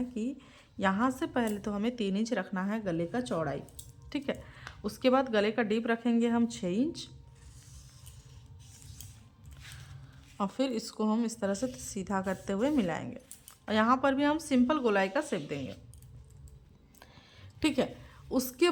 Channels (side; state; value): both; identical; correlation 1.00